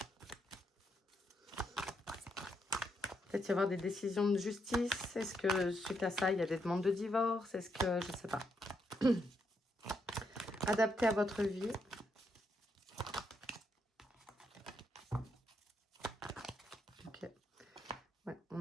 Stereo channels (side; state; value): both; normal; correlation 0.78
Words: Peut-être y avoir des décisions de justice. Est-ce que suite à ça, il y a des demandes de divorce? Est-ce que, je ne sais pas. Adapté à votre vie. Ok. Ouais,